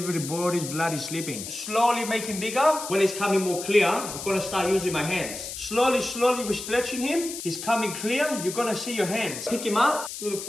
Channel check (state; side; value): noise; left; hiss, 8 dB below the sound